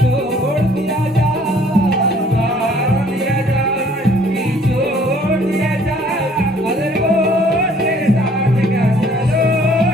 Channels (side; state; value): both; normal; correlation 0.58